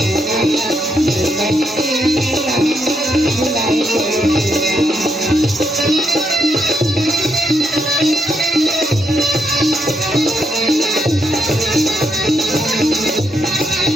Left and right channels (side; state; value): both; normal; correlation 0.78